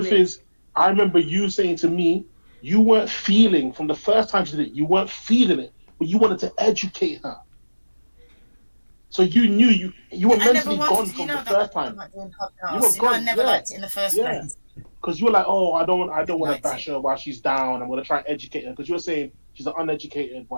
is, I remember you saying to me, you weren't feeling from the first time she did it. You weren't feeling it, but you wanted to educate her. So you knew you were mentally gone from the first time. You were gone. I never liked it in the first place. Because you were like, oh, I don't want to bash her while she's down. I'm going to try and educate her. Because you were saying she's an uneducated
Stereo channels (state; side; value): inverted; both; correlation -1.00